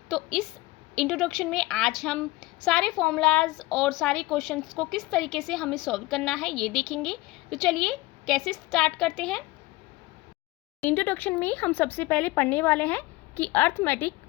तो इस इंट्रोडक्शन में आज हम सारे फॉर्मूलाज और सारे क्वेश्चंस को किस तरीके से हमें सॉल्व करना है ये देखेंगे। तो चलिए कैसे स्टार्ट करते हैं। इंट्रोडक्शन में हम सबसे पहले पढ़ने वाले हैं कि अर्थमेटिक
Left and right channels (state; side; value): quieter; right; 20.5 dB